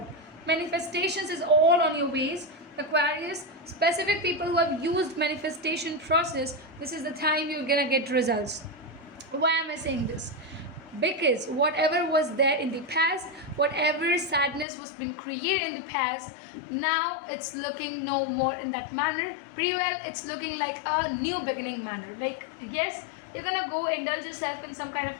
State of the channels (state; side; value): drops out; right; at 14.7 s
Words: Manifestations is all on your ways. Aquarius, specific people who have used manifestation process, this is the time you're gonna get results. Why am I saying this? Because whatever was there in the past, whatever sadness was been created in the past, now it's looking no more in that manner. Pretty well, it's looking like a new beginning manner. Like, yes, you're gonna go indulge yourself in some kind